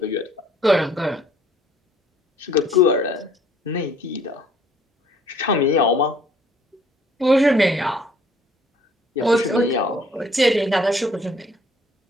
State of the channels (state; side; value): normal; both; correlation 0.58